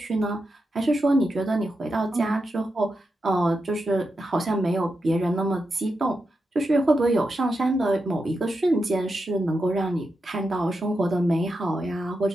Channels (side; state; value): both; normal; correlation 0.87